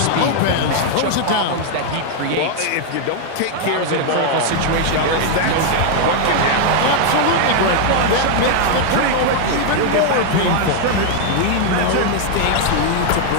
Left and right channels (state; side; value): different; both; correlation 0.00